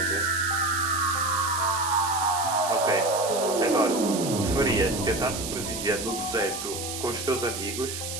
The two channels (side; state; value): right; noise; hiss, 6 dB below the sound